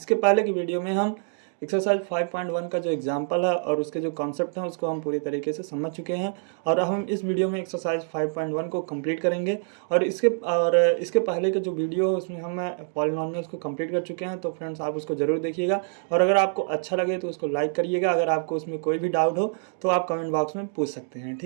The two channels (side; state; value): left; silent; digital silence